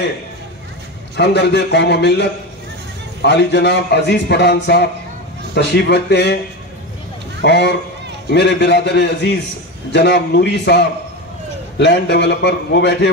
ہمدرد قوم و ملت عالی جناب عزیز پٹھان صاحب تشریف رکھتے ہیں، اور میرے برادر عزیز جناب نوری صاحب لینڈ ڈیولپر وہ بیٹھے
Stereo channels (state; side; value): normal; both; correlation 0.20